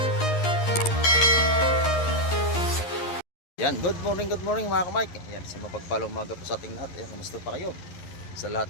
Yan, good morning mga ka-Mike. Yan, sa mapagpalang umaga po sa ating lahat. Ayan, kamusta pa kayo? Sa lahat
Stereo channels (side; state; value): right; late; 11 ms